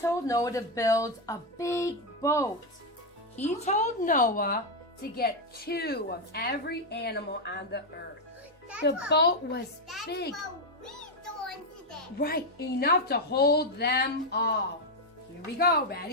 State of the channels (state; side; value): normal; both; correlation 0.04